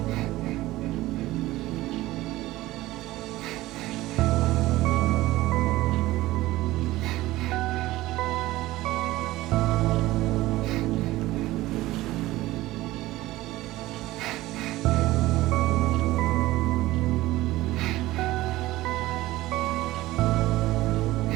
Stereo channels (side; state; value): left; quieter; 17.4 dB